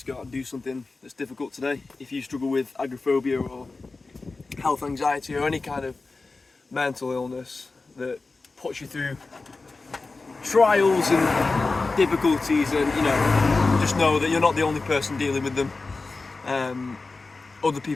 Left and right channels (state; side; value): quieter; right; 3.7 dB